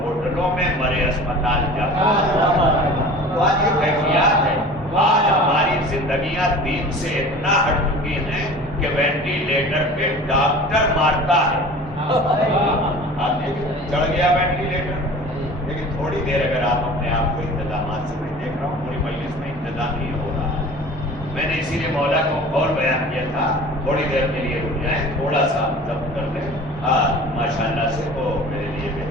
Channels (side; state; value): both; normal; correlation 0.41